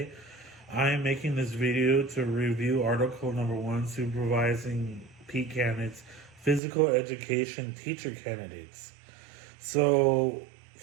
I am making this video to review article number 1, supervising PED candidates, physical education teacher candidates. So,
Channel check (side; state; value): left; drops out; at 6.6 s